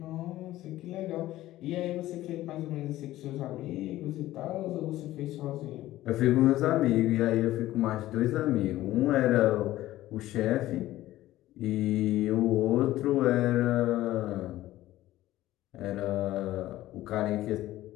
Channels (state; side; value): quieter; right; 15.4 dB